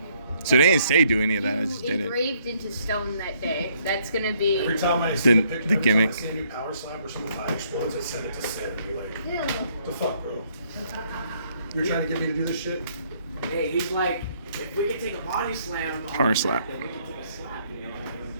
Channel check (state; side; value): inverted; both; correlation -0.68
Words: So they didn't say do any of that. I just you did it. engraved into stone that day. That's gonna be. Every time I see The- a picture, the gimmick. I see a new power slap or some fire explodes, I send it to Sid and be like, what the fuck, bro? You're trying to get me to do this shit? Hey, he's like, if we can take a body slam, on Power the slap. then we can take a slap, you know?